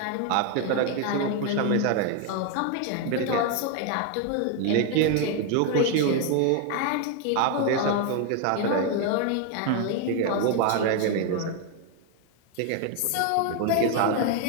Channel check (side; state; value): both; different; correlation 0.01